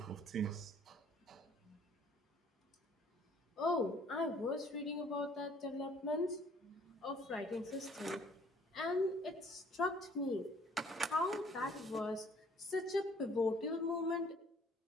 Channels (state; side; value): normal; both; correlation 0.58